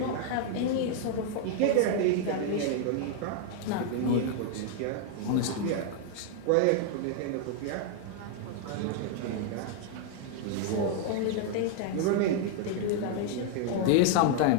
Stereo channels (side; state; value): both; different; correlation 0.00